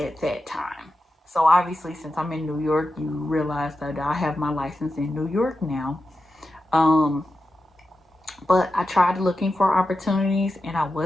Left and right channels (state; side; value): normal; both; correlation 0.90